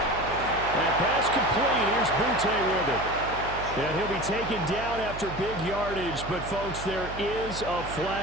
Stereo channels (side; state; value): right; noise; hum, 11 dB below the sound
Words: And pass complete. Here's BTA with it. And he'll be taken down after big yardage. But, folks, there is a